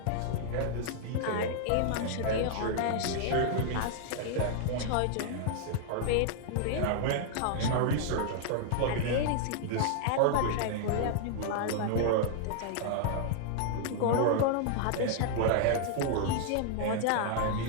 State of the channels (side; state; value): both; different; correlation -0.01